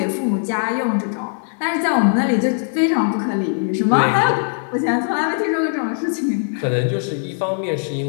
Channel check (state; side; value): silent; right; digital silence